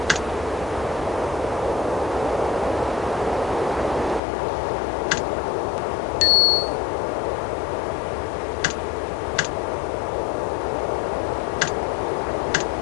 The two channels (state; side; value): drops out; right; at 4.2 s